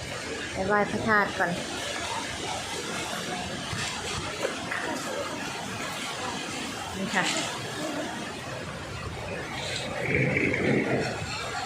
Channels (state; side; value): identical; both; correlation 1.00